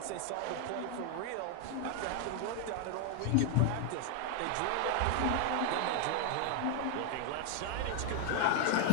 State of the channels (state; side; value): different; both; correlation 0.00